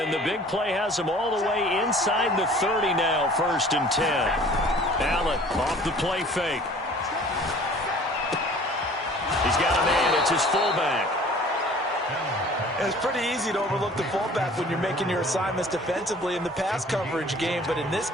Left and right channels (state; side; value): normal; both; correlation 0.49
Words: the big play has him all the way inside the 30 now, 1st and 10. Allen off the play fake. He's got a man. It's his fullback. It's pretty easy to overlook the fullback when you're making your assignments defensively in the pass coverage game. But in this